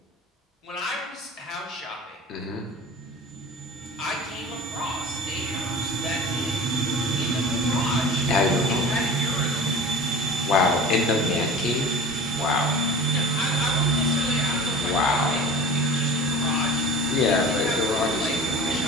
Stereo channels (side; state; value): both; normal; correlation 0.38